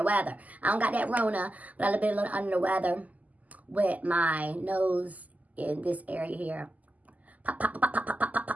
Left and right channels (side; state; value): left; late; 0.077 ms